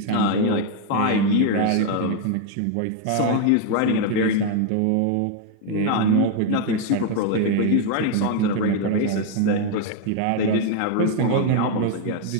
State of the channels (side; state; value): both; different; correlation 0.01